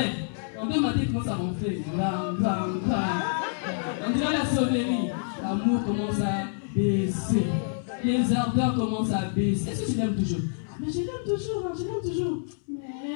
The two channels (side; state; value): right; silent; 60 dB below the other